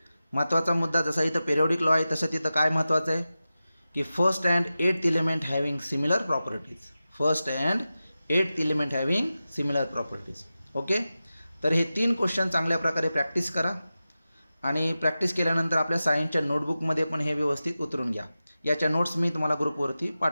महत्त्वाचा मुद्दा जसा इथं पेरियोडिक लॉ आहे तसं तिथं काय महत्त्वाचं आहे की first and 8th element having similar properties. First and 8th element having similar properties. Okay. तर हे 3 क्वेश्चन चांगल्या प्रकारे प्रॅक्टिस करा आणि प्रॅक्टिस केल्यानंतर आपल्या सायन्सच्या नोटबुकमध्ये पण हे व्यवस्थित उतरून घ्या. याच्या नोट्स मी तुम्हाला ग्रुपवरती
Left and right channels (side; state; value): both; inverted; correlation -0.94